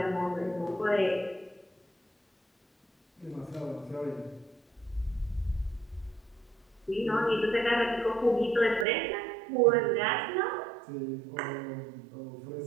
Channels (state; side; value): drops out; left; at 8.8 s